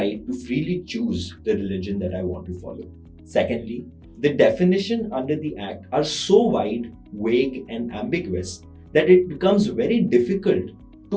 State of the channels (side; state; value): both; identical; correlation 1.00